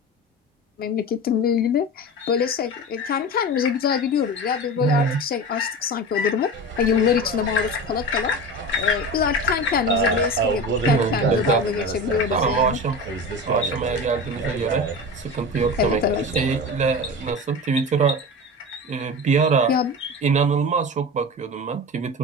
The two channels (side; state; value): both; normal; correlation 0.29